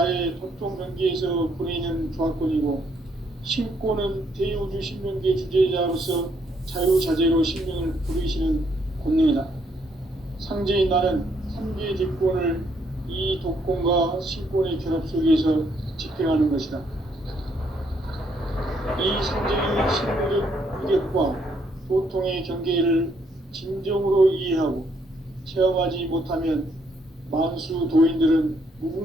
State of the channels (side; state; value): both; normal; correlation 0.71